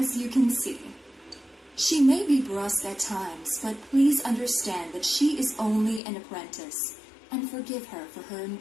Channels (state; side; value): drops out; right; at 6.0 s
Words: you can see, she may be brusque at times, but please understand that she is only an apprentice, and forgive her for her